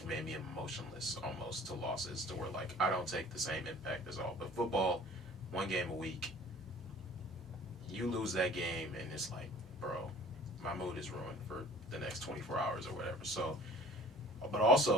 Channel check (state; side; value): normal; both; correlation 0.49